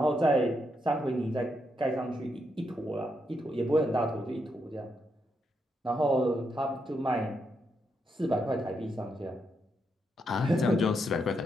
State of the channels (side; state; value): both; normal; correlation 0.81